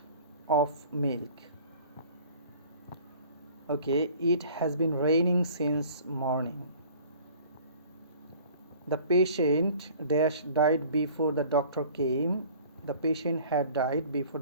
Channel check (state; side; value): inverted; both; correlation -0.48